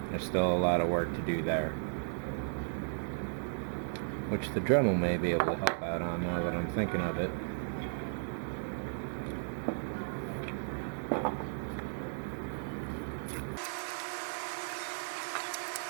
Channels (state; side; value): silent; left; digital silence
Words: There's still a lot of work to do there, which the Dremel may be able to help out on now that I'm thinking of it.